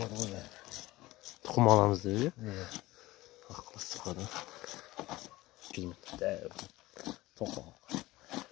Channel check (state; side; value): quieter; right; 18.7 dB